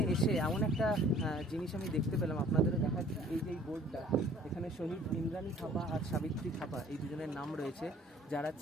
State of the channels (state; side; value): normal; both; correlation 0.53